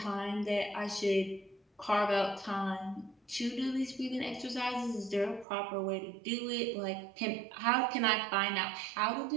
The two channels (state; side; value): drops out; left; at 5.5 s